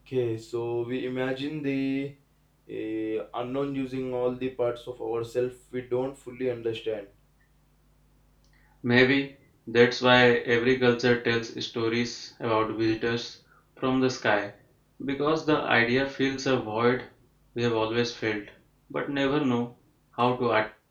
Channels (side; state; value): both; identical; correlation 1.00